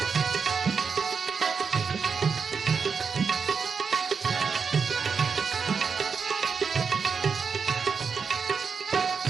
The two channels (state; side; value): quieter; left; 5.7 dB